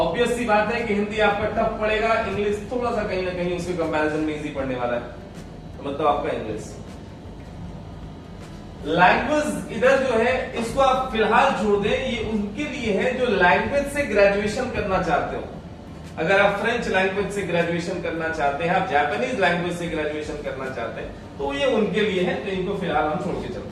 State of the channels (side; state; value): both; identical; correlation 1.00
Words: सी बात है कि हिंदी आपका टफ पड़ेगा, इंग्लिश थोड़ा सा कहीं ना कहीं उसके कंपैरिजन में इजी पड़ने वाला है, तो मतलब आपका इंग्लिश। लैंग्वेज इधर जो है इसको आप फिलहाल छोड़ दें, ये उनके लिए है जो लैंग्वेज से ग्रेजुएशन करना चाहते हो। अगर आप फ्रेंच लैंग्वेज से ग्रेजुएशन करना चाहते हैं, आप जापानीज लैंग्वेज से ग्रेजुएशन करना चाहते हैं, तो ये उनके लिए है, तो इनको फिलहाल हम छोड़ के